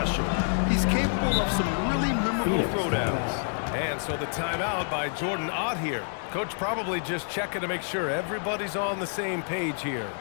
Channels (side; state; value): right; silent; digital silence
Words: He's capable of some really memorable throwdowns. And so the timeout by Jordan Ott here. Coach probably just checking to make sure everybody's on the same page here.